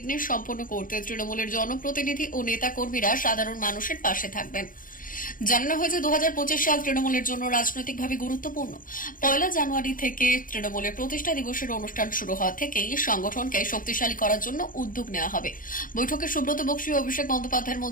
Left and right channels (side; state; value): right; late; 0.40 ms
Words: সম্পন্ন করতে তৃণমূলের জনপ্রতিনিধি ও নেতা কর্মীরা সাধারণ মানুষের পাশে থাকবেন। জানানো হয়েছে 2025 সাল তৃণমূলের জন্য রাজনৈতিকভাবে গুরুত্বপূর্ণ। 1 জানুয়ারি থেকে তৃণমূলের প্রতিষ্ঠা দিবসের অনুষ্ঠান শুরু হওয়া থেকেই সংগঠনকে শক্তিশালী করার জন্য উদ্যোগ নেওয়া হবে। বৈঠকে সুব্রত বক্সী ও অভিষেক বন্দ্যোপাধ্যায়ের